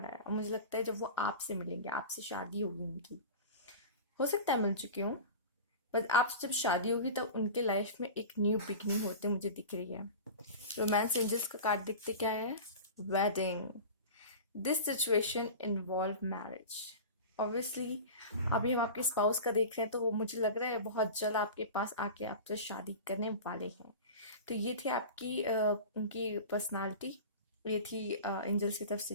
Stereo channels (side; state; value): both; inverted; correlation -0.32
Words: आया और मुझे लगता है जब वो आपसे मिलेंगे, आपसे शादी होगी उनकी। हो सकता है मिल चुकी हूँ, बट आपसे जब शादी होगी तब उनके लाइफ में एक न्यू बिगनिंग होते मुझे दिख रही है। रोमांस एंजल्स का कार्ड दिखते क्या है? Wedding. This situation involve marriage. Obviously अभी हम आपके स्पाउस का देख रहे हैं तो वो मुझे लग रहा है बहुत जल्द आपके पास आके आपसे शादी करने वाले हैं। तो ये थी आपकी उनकी पर्सनालिटी। ये थी एंजल्स की तरफ से